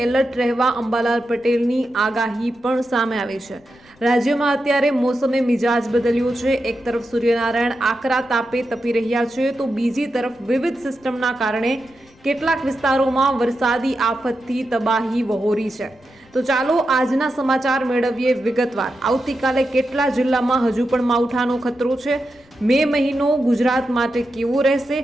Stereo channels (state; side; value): noise; left; rumble, 30 dB below the sound